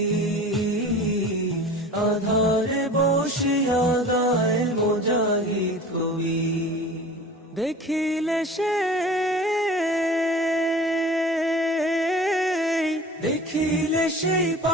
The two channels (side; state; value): both; normal; correlation 0.39